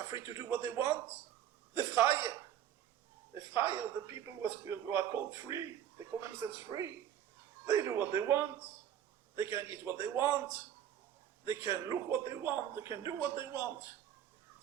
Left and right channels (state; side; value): quieter; left; 10.5 dB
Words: free to do what they want. The Chaye, the people who are called free, they call themselves free. They do what they want. They can eat what they want. They can look what they want. They can do what they want.